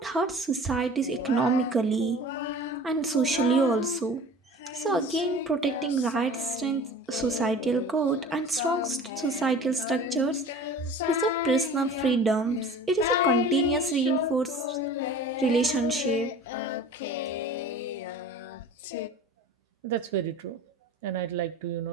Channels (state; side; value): normal; both; correlation 0.42